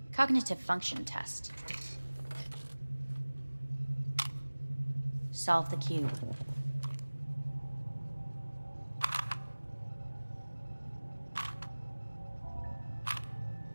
Cognitive function test. Solve the cube.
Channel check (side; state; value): both; inverted; correlation -1.00